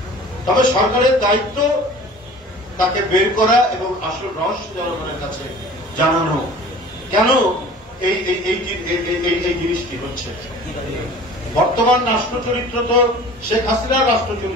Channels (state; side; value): normal; both; correlation 0.43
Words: তবে সরকারের দায়িত্ব তাকে বের করা এবং আসল রহস্য জনগণের কাছে জানানো, কেন এই জিনিসটি হচ্ছে। বর্তমান রাষ্ট্র চরিত্র তো শেখ হাসিনার রাষ্ট্র